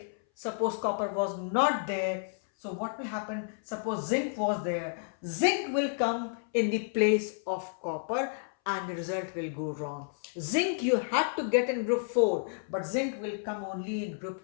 suppose copper was not there, so what will happen? Suppose zinc was there, zinc will come in the place of copper and the result will go wrong. Zinc you had to get in group 4, but zinc will come only in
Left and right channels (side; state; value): right; silent; 57 dB below the other